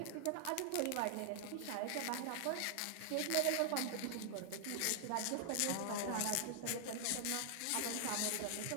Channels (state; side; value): different; both; correlation 0.00